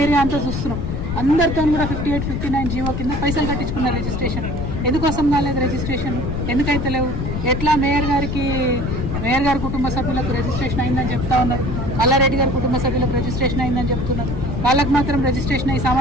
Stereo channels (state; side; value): noise; left; rumble, 3 dB below the sound